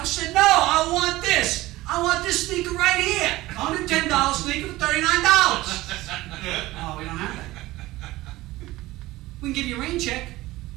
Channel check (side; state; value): left; quieter; 18.1 dB